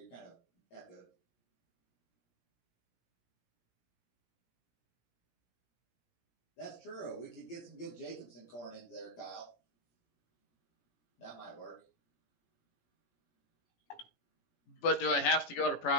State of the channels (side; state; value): right; late; 17 ms